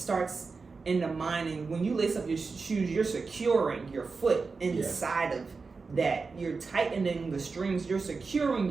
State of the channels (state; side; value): quieter; left; 4.5 dB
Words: in the mind, and when you lace up your shoes, you're securing your foot inside of that. You're tightening the strings. You're securing